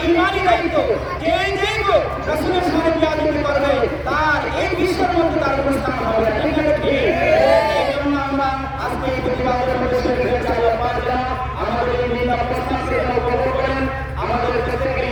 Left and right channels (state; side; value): identical; both; correlation 1.00